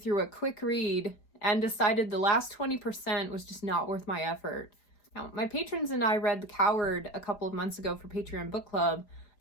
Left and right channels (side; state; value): right; late; 4.9 ms